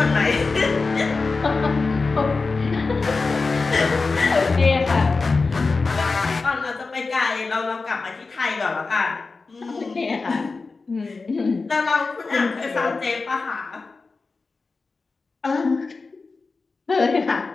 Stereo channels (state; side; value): quieter; right; 4.1 dB